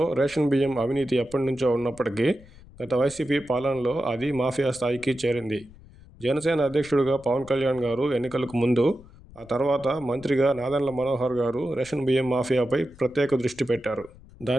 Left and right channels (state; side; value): noise; left; rumble, 22 dB below the sound